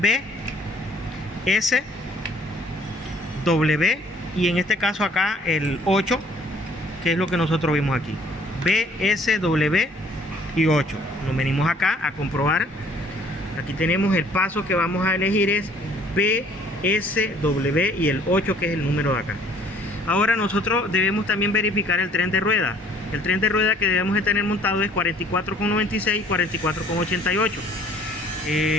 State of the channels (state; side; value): normal; both; correlation 0.58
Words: S, W, y en este caso acá el 8, que es lo que nosotros vimos aquí, B, S, W y 8. Nos venimos acá a comprobar. Aquí tenemos el paso que vamos a elegir, es B, S, W y el 8, que es el número de acá. Ahora nosotros debemos también verificar el tren de rueda. El tren de rueda que debemos de tener montado es 44,96 y 44,88.